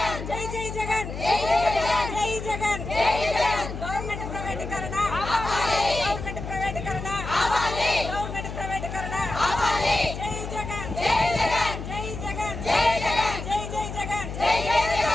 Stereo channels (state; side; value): noise; left; hum, 8 dB below the sound